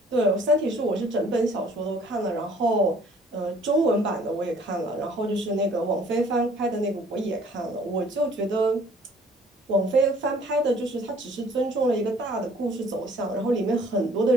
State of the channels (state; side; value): normal; both; correlation 0.56